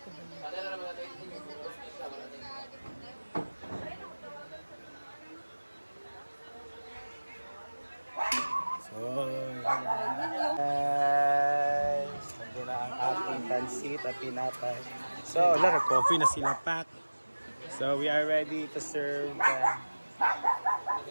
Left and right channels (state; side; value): inverted; both; correlation -1.00